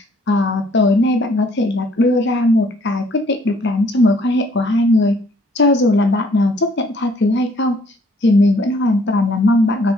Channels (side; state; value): both; normal; correlation 0.62